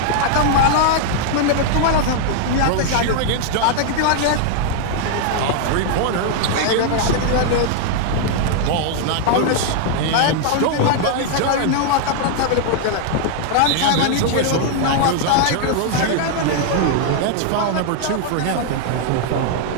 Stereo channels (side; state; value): both; different; correlation 0.00